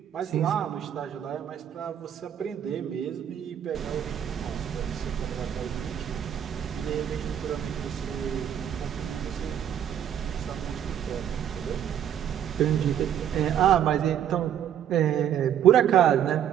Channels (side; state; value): left; quieter; 9.8 dB